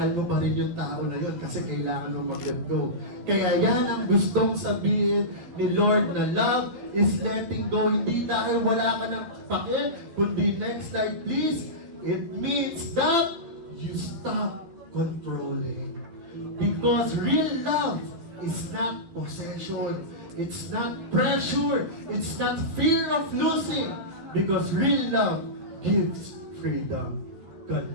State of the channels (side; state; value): left; late; 12 ms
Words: mo pa rin yung tao na yun kasi kailangan mo mag-let go. Kaya yan ang gustong sabihin ni Lord na love is letting go. Hindi dahil wala ka ng pakil, kundi next slide please, it means that you stop controlling. Because real love is not possession. It's not pressure. It's not fear of losing. Because real love gives freedom.